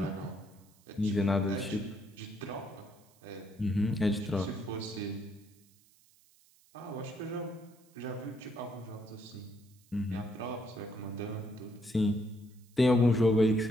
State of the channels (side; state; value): right; noise; hiss, 30 dB below the sound